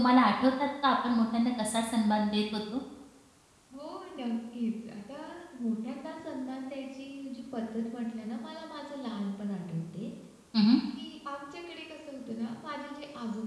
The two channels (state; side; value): identical; both; correlation 1.00